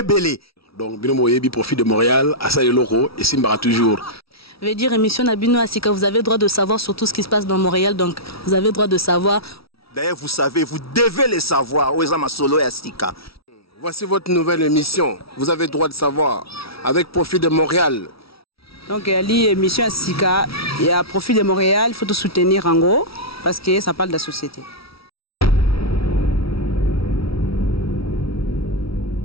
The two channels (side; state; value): right; late; 0.76 ms